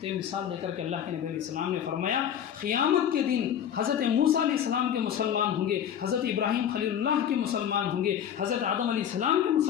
تو یہ مثال دے کر کے اللہ کے نبی علیہ السلام نے فرمایا قیامت کے دن حضرت موسیٰ علیہ السلام کے مسلمان ہوں گے، حضرت ابراہیم خلیل اللہ کے مسلمان ہوں گے، حضرت آدم علیہ السلام کے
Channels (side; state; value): right; quieter; 9.4 dB